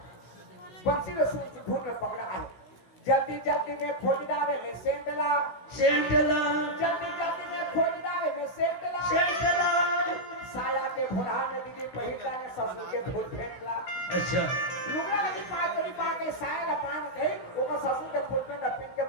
बंसी ने सूट धुन में पकड़ा है जल्दी जल्दी में खोज डाले में सेंटला सेंटला जल्दी में खोज डाले में सेंटला सेंटला साया के भुरहा में दीदी पहिला ने ससुर के फूल फेंकला अच्छा लुगरा लगी पार के साया ला पान कही ओका ससुर के फूल पे लपेट के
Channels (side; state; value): right; late; 17 ms